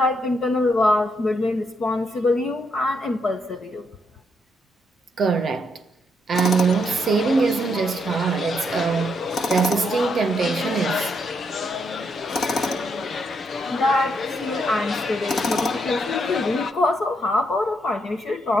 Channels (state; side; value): normal; both; correlation 0.77